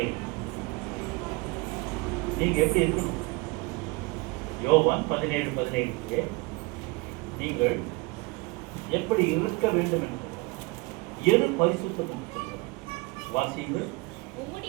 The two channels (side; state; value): left; quieter; 25.2 dB